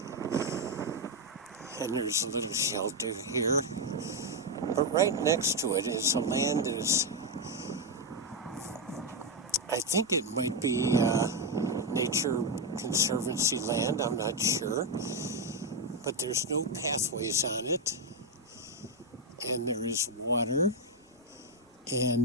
And there's a little shelter here. But right next to it is a land that is, I think it might be Nature Conservancy land, I'm not sure. But there's no pathways on it. And there is water.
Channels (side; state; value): both; normal; correlation 0.04